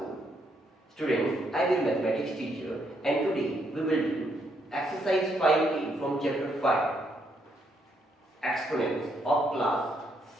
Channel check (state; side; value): normal; both; correlation 0.74